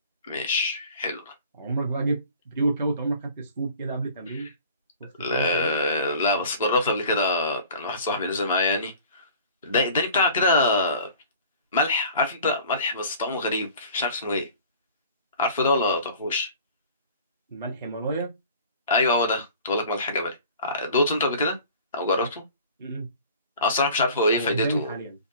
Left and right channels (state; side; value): inverted; both; correlation -0.46